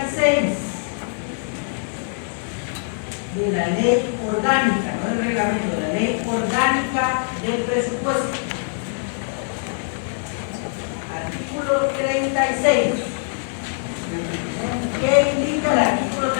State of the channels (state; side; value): silent; right; 64 dB below the other